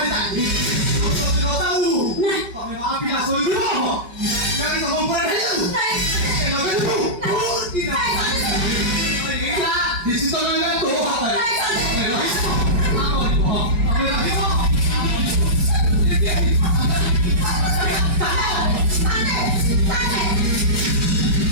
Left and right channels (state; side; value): late; left; 5.3 ms